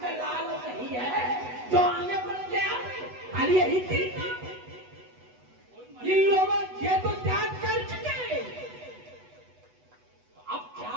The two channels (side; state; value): left; late; 8.1 ms